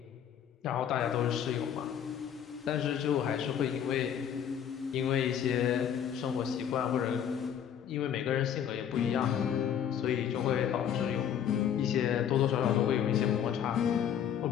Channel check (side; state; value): right; quieter; 9.0 dB